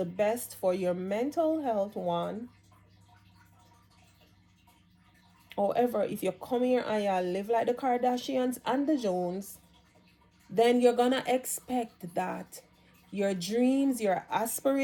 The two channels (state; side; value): identical; both; correlation 1.00